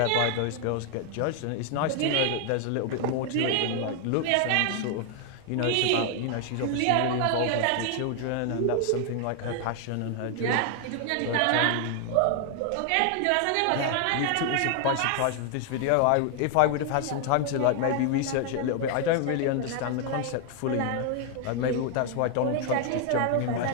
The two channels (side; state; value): both; different; correlation 0.00